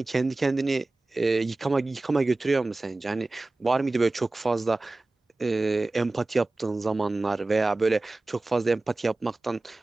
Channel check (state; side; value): quieter; left; 3.1 dB